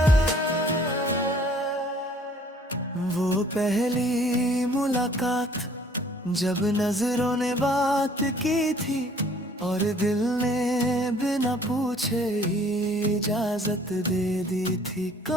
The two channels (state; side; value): normal; both; correlation 0.57